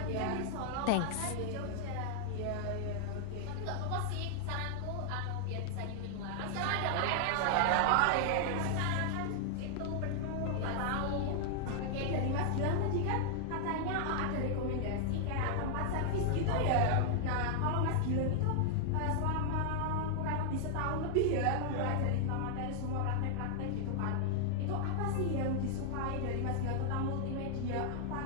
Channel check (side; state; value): both; different; correlation 0.00